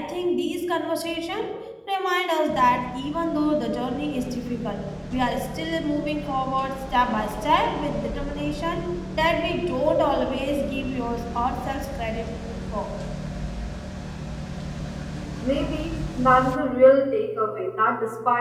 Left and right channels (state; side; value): identical; both; correlation 1.00